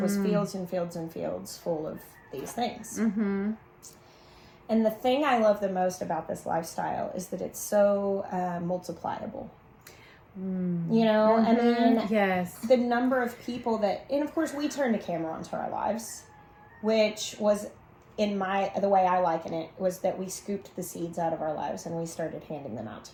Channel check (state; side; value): identical; both; correlation 1.00